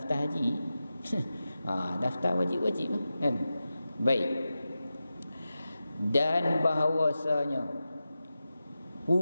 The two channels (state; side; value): inverted; both; correlation -0.92